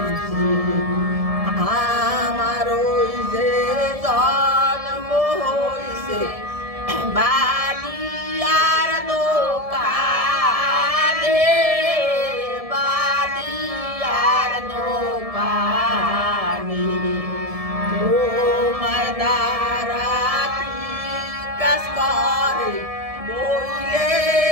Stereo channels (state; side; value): late; left; 1.7 ms